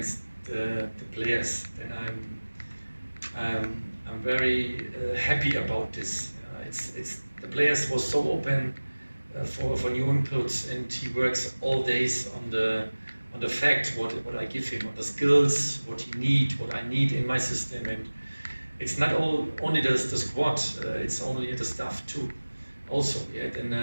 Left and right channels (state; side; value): inverted; both; correlation -1.00